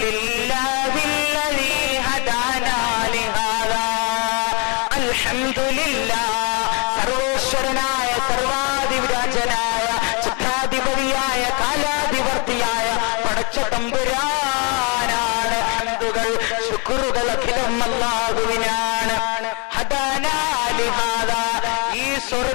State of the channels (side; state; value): right; quieter; 32.4 dB